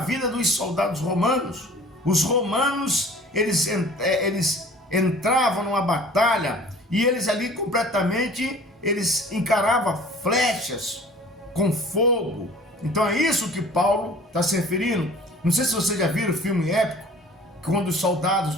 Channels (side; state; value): both; normal; correlation 0.47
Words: dos soldados romanos. Os romanos, eles entravam numa batalha e eles ali completamente, eles encaravam flechas com fogo. Então é isso que Paulo está se referindo. Não sei se vocês já viram o filme épico, quando os soldados